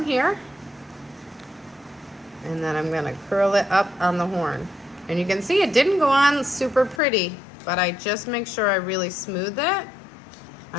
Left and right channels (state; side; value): drops out; right; at 7.0 s